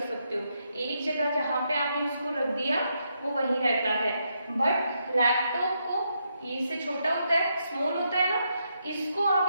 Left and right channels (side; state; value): both; inverted; correlation -0.80